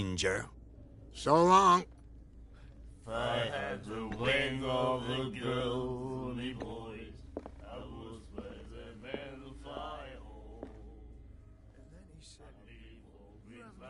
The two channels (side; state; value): both; identical; correlation 1.00